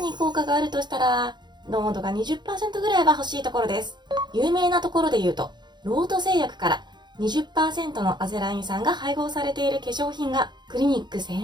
効果があるとしたら濃度が 20% ぐらいは欲しいところです。有名なところで言うと、ロート製薬から20% のアゼライン酸が配合されている化粧品がクリニック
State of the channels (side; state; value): left; late; 0.21 ms